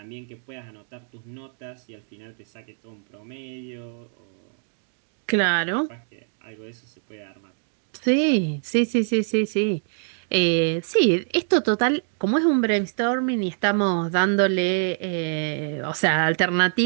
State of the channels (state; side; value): silent; left; digital silence